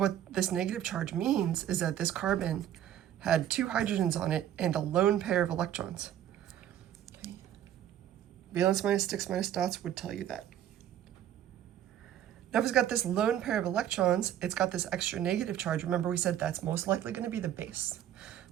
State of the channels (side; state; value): left; quieter; 11.1 dB